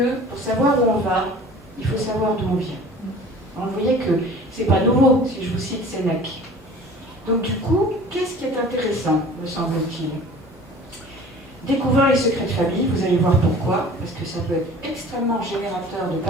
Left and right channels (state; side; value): normal; both; correlation 0.45